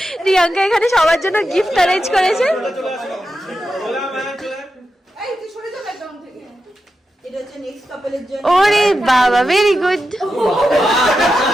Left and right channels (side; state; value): both; normal; correlation 0.89